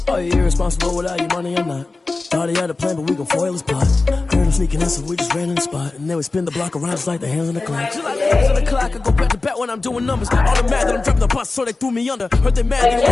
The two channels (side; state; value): right; quieter; 3.5 dB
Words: Are you irresponsible without your money or not? Thought he had a plan, but we gon' foil his plot. Heard him sneaking in, so we just ran in the spot. And then we spin the block around just like the hands on the clock. Just like the hands on the clock, I go back to back when I'm doing numbers. All the mad that I'm dropping the bus, so they threw me under. Heard they mad, they